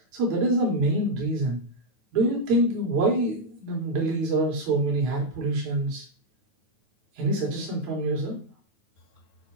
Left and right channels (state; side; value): late; left; 9.2 ms